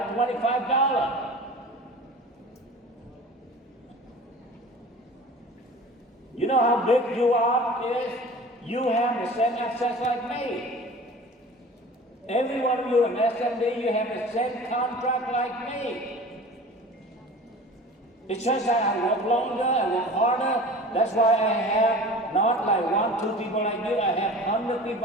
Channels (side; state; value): both; normal; correlation 0.40